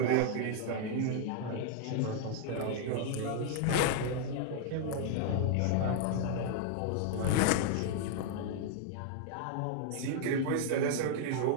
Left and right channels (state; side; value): different; both; correlation 0.00